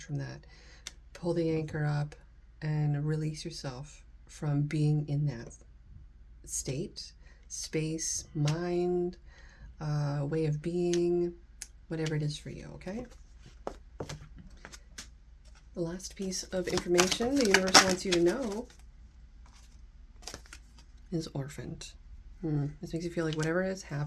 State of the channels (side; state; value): both; identical; correlation 1.00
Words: from that. Pull the anchor up and release yourself from being in that state, space, mind, way of being, whatever it is for you, okay? The last piece of information the universe wants you to know is orphaned. This makes you feel like whatever has